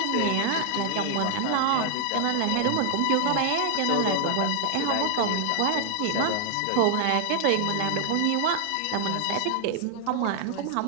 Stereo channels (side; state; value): both; different; correlation 0.00